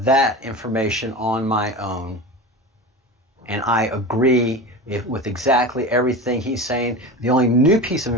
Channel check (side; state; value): both; normal; correlation 0.28